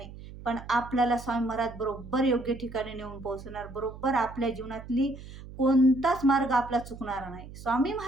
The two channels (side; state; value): right; noise; hum, 15 dB below the sound